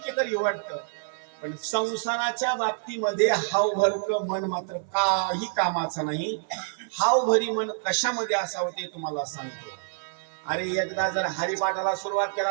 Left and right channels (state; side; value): silent; left; 60 dB below the other